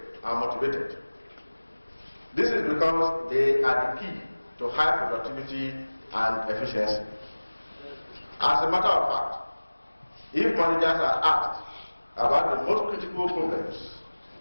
and motivated. This is because they are the key to high productivity and efficiency. As a matter of fact, if managers are asked about the most critical problems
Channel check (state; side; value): inverted; both; correlation -1.00